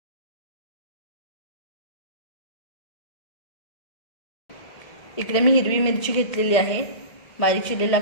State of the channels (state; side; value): late; right; 1.7 ms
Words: इकडे मी हिरवी मिरची घेतलेली आहे, बारीक चिरलेला